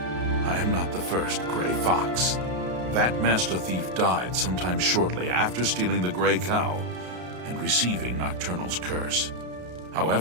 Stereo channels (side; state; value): left; late; 33 ms